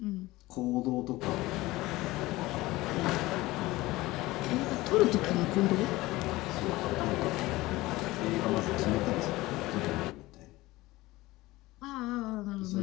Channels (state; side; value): quieter; right; 19.2 dB